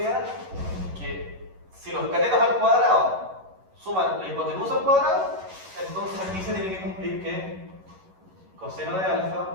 que si los catetos al cuadrado suman la hipotenusa al cuadrado, entonces aquí se tiene que cumplir que coseno de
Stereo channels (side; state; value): left; late; 11 ms